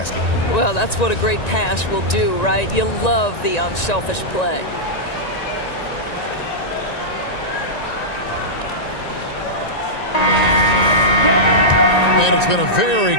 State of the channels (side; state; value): right; late; 1.9 ms